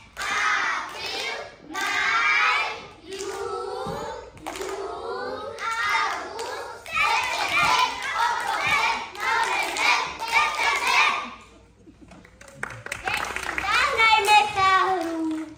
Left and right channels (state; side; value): identical; both; correlation 1.00